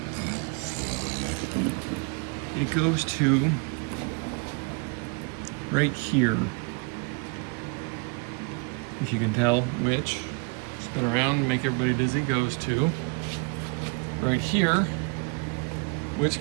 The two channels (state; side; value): quieter; left; 31.7 dB